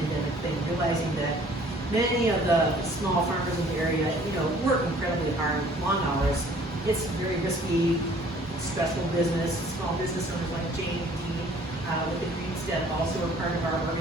thing, realizing that many of the small farmers in the area, work incredibly hard, long hours. It's very risky, stressful business. Small business owners like Jane and Dee with the Greenstead also are part of our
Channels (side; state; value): both; normal; correlation 0.55